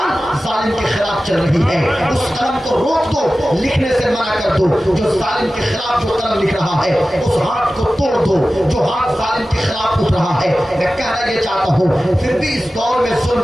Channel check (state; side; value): normal; both; correlation 0.95